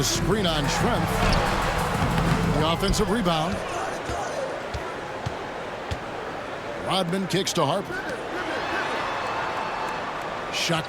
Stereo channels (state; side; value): identical; both; correlation 1.00